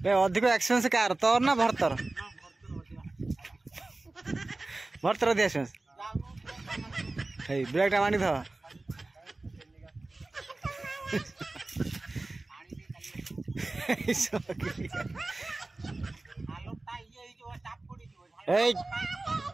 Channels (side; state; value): left; quieter; 3.1 dB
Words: अधिक एक्सपेरियंस कार तोर ना भरतर भरतर अधिक एक्सपेरियंस ब्रेक टा मानी था